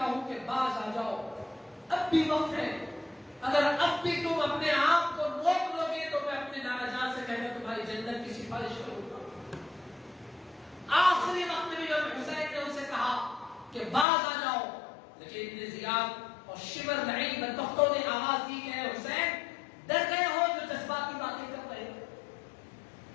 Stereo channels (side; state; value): right; drops out; at 14.1 s